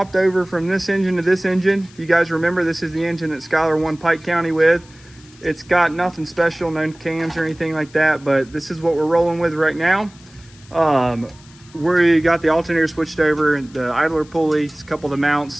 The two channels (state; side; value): noise; left; hiss, 25 dB below the sound